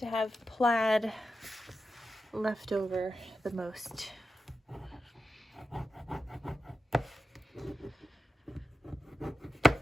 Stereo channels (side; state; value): both; normal; correlation 0.90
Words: have plaid left over the most.